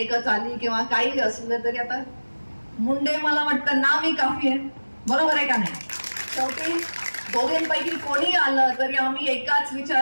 एकच आली किंवा काही असलं तरी आता मुंडे मला वाटतं नाव ही काफी आहे. बरोबर आहे का नाही? शेवटी दोघींपैकी कोणी आलं तरी आम्ही एकाच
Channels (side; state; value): both; inverted; correlation -1.00